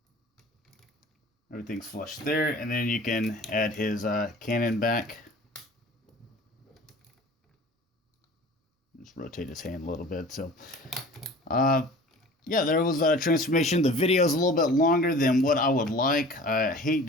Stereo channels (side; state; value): both; normal; correlation 0.43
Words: Everything's flush there. And then you can add his cannon back. Just rotate his hand a little bit. So, yeah, there was a transformation. The video is a little bit longer than what I would like. I hate